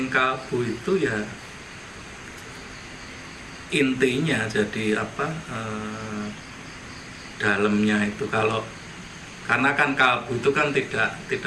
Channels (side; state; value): both; identical; correlation 1.00